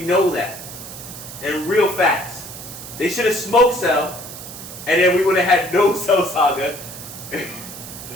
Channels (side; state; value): right; noise; hiss, 12 dB below the sound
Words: know that. And real facts. They should have smoked Cell, and then we would have had no Cell Saga. There